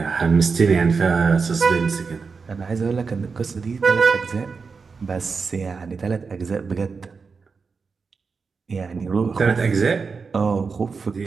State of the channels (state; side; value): quieter; left; 5.0 dB